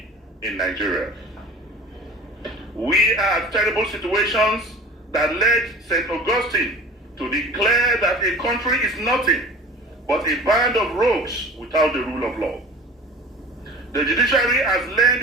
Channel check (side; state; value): both; normal; correlation 0.40